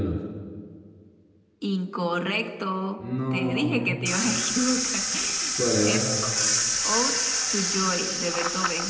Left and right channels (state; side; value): identical; both; correlation 1.00